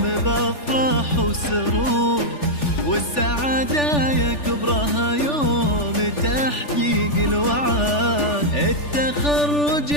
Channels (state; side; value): late; right; 3.4 ms